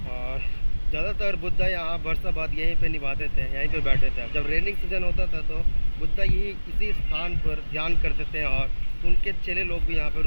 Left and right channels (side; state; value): both; inverted; correlation -1.00